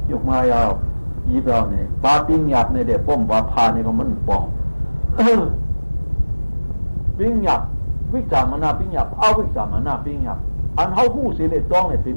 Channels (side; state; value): both; inverted; correlation -1.00